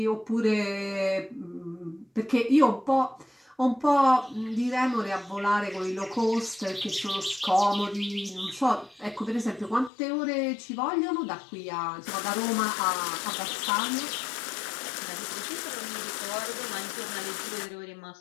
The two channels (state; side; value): drops out; right; at 9.9 s